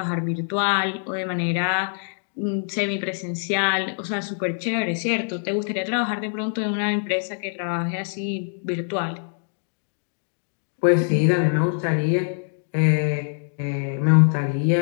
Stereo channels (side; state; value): right; silent; digital silence